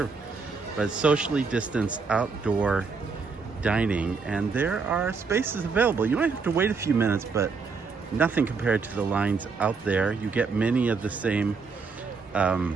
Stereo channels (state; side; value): quieter; left; 4.9 dB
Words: but socially distanced outdoor dining, and there are spaces available. You might have to wait a few minutes, but nothing compared to the lines out there. You get many of the same